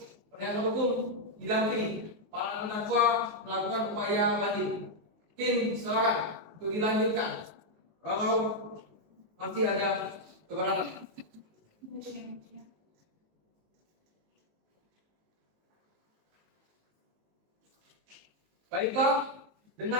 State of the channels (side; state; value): left; late; 19 ms